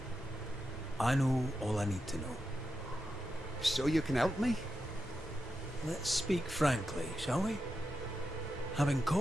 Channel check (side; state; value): both; normal; correlation 0.88